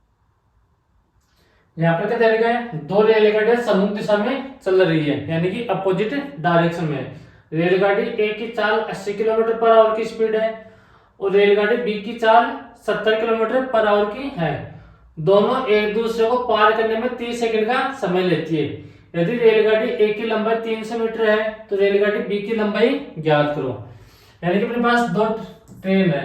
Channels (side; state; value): both; identical; correlation 1.00